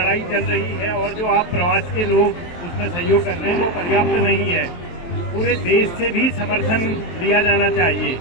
चल रही है और जो आप प्रवास के लोग उसमें सहयोग कर रहे हैं वो पर्याप्त नहीं है। पूरे देश से भी समर्थन लिया जाना चाहिए,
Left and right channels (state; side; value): late; right; 23 ms